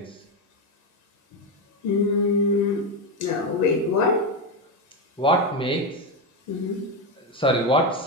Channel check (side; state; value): both; normal; correlation 0.09